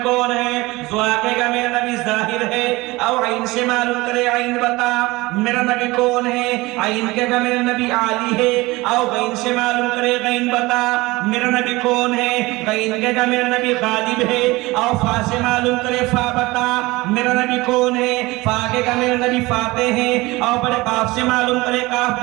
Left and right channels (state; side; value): quieter; left; 21.4 dB